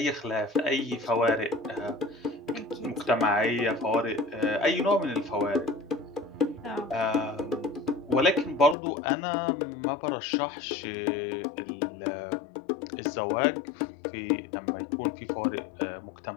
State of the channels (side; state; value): right; drops out; at 8.8 s